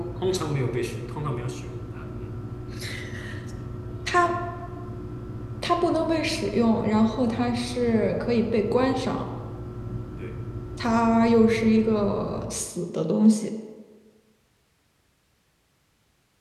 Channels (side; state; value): both; identical; correlation 1.00